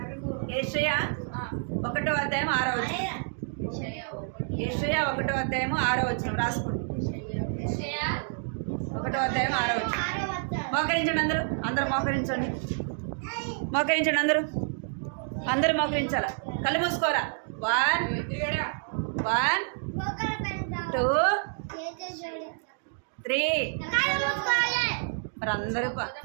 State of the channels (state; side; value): silent; left; 59 dB below the other